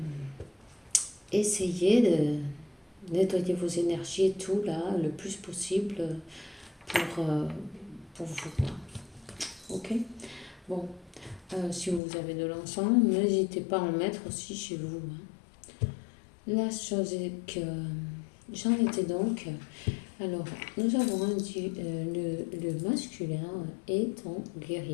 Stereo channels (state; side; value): drops out; right; at 12.0 s